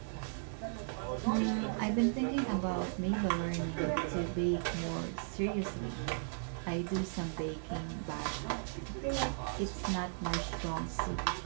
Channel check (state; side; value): silent; left; 54 dB below the other